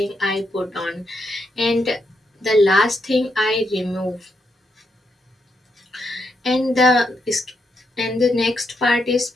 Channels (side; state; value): both; normal; correlation 0.81